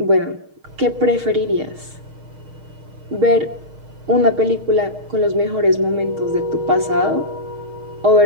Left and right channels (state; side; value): late; left; 6.5 ms